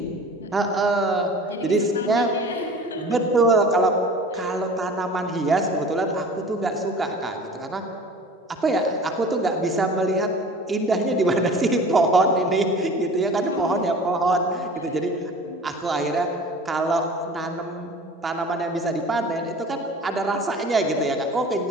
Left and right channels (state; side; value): normal; both; correlation 0.42